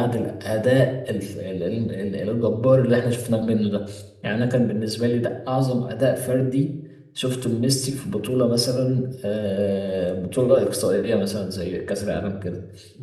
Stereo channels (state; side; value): identical; both; correlation 1.00